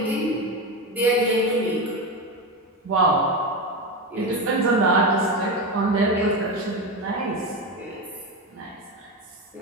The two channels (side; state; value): both; normal; correlation 0.17